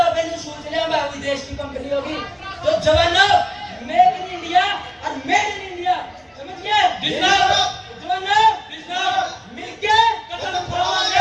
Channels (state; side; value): identical; both; correlation 1.00